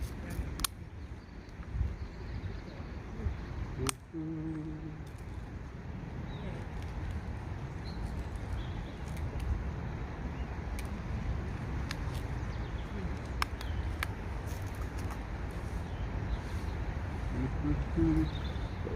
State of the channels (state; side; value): identical; both; correlation 1.00